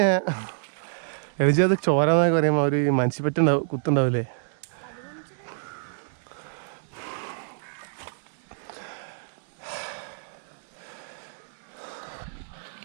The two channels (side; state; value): left; silent; digital silence